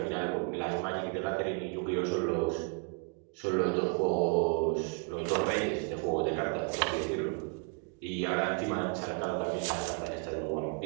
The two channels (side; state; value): left; quieter; 36.0 dB